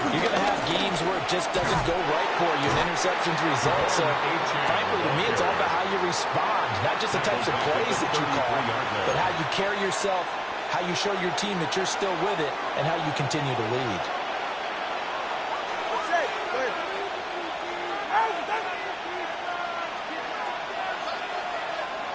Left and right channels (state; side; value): identical; both; correlation 1.00